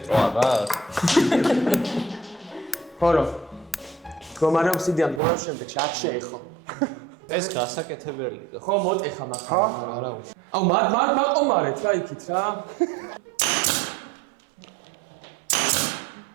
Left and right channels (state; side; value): drops out; left; at 5.2 s